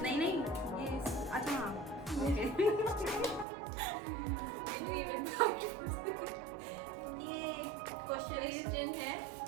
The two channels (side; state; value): left; drops out; at 3.5 s